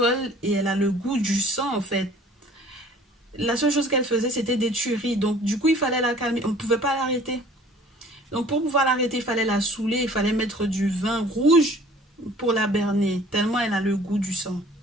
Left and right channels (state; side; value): normal; both; correlation 0.51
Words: et elle a le goût du sang en fait. La seule chose qu'elle faisait, c'était des tueries. Donc du coup, il fallait la calmer. On ne pouvait pas l'arrêter. Donc pour pouvoir l'arrêter, il fallait la saouler, il fallait mettre du vin rouge pour la berner, tellement elle a le goût du sang.